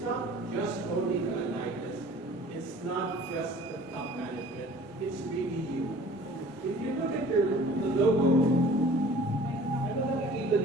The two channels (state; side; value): normal; both; correlation 0.48